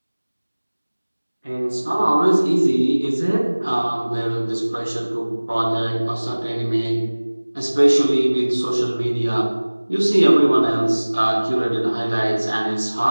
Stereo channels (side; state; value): both; inverted; correlation -1.00